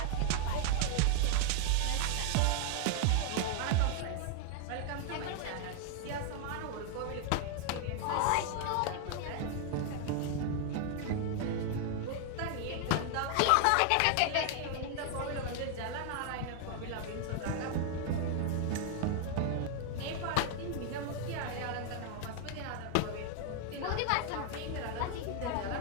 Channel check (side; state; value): both; different; correlation 0.00